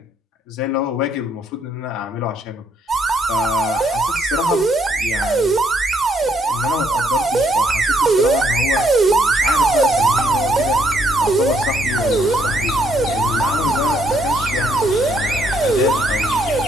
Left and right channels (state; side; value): normal; both; correlation 0.71